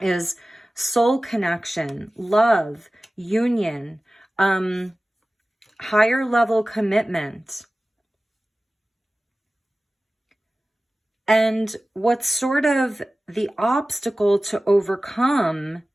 is soul connection, love, union, higher level commitment. And what's sort of the obstacle to overcome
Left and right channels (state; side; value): normal; both; correlation 0.97